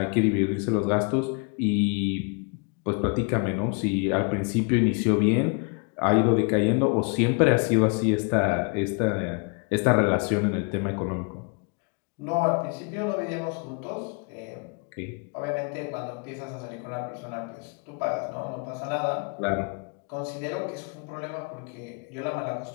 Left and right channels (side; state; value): right; quieter; 35.6 dB